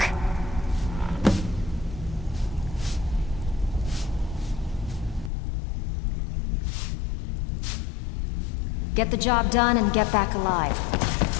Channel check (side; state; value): right; drops out; at 5.3 s